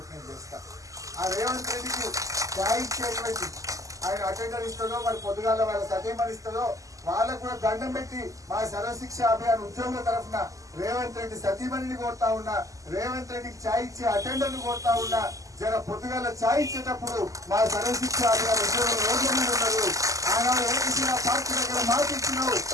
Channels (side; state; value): left; late; 0.16 ms